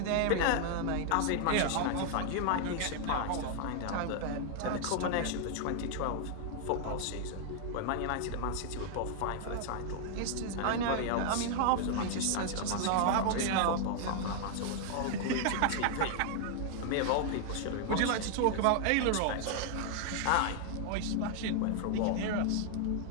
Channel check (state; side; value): different; both; correlation 0.00